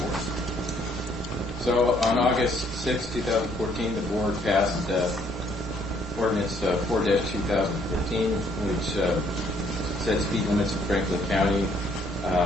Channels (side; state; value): both; normal; correlation 0.66